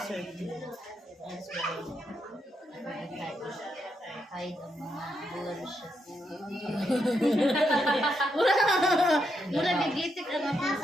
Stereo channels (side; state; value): both; normal; correlation 0.81